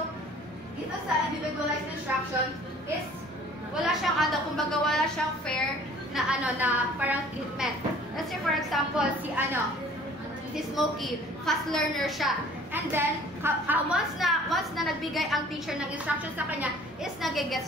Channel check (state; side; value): noise; right; rumble, 29 dB below the sound